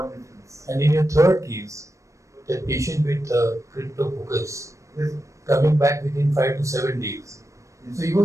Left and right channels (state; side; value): late; left; 0.15 ms